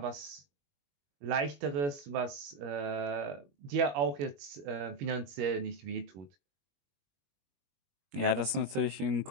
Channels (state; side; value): late; left; 21 ms